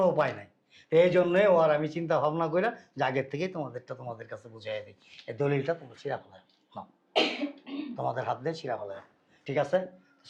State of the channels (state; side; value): identical; both; correlation 1.00